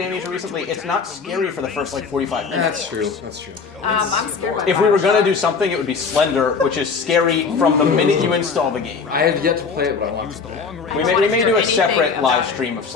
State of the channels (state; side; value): quieter; right; 5.3 dB